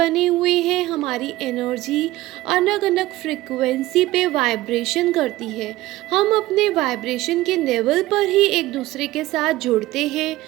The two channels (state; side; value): quieter; left; 17.1 dB